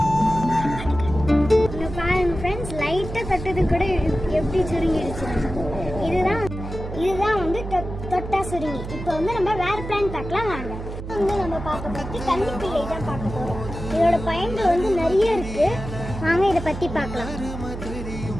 பாருங்க ஃப்ரெண்ட்ஸ், லைட்டாக தொட்டது கூட எப்படி சுருங்கிடுச்சு. இதுதான் வந்து தொட்டா சுருங்கி. இப்போ வந்து நம்ம வேற பிளான் பார்க்கலாம் வாங்க. வந்து நம்ம பார்க்க பற்றி கன்னிப்பிள்ளை தான் பார்க்க போகிறோம். இதோட பயன்கள் வந்து நிறைய இருக்கு, வாங்க இதை பற்றி பார்க்கலாம்.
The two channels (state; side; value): noise; right; hum, 8 dB below the sound